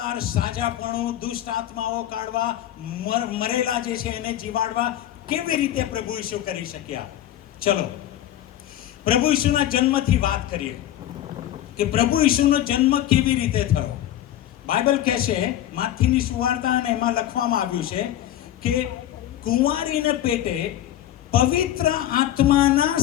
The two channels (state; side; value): quieter; right; 12.6 dB